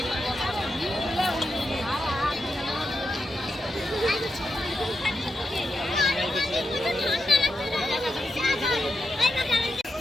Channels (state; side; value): normal; both; correlation 0.86